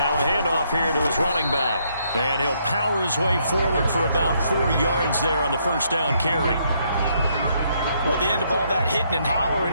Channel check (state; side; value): inverted; both; correlation -0.72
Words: a handoff here to his running back. And he'll power his way forward for about 4 yards there on the first down carry. Well, at the end of all that hitting and